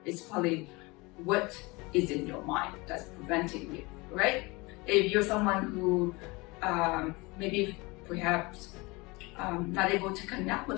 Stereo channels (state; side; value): quieter; right; 24.9 dB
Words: It's probably what is in your mind that's preventing you, right? If you're someone who maybe perhaps not able to connect